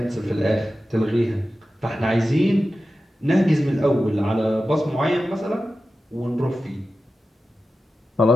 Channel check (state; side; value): normal; both; correlation 0.93